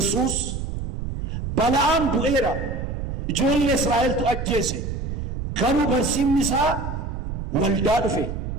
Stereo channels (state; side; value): noise; right; rumble, 5 dB below the sound